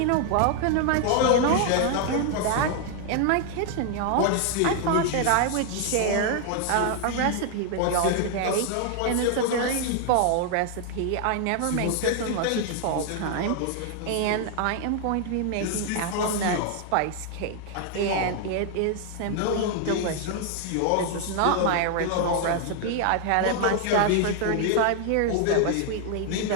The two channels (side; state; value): both; different; correlation 0.00